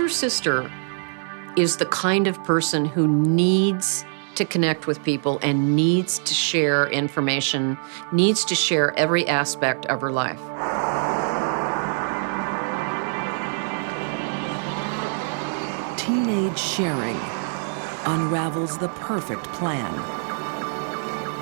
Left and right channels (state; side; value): silent; left; digital silence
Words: sister is the kind of person who needs to connect with people and needs to share information, needs to share every aspect of her life. Teenage sharing unravels the perfect plan.